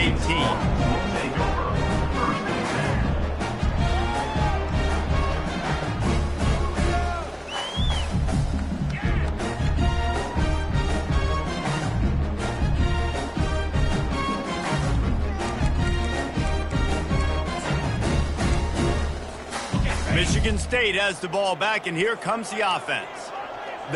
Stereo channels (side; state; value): both; identical; correlation 1.00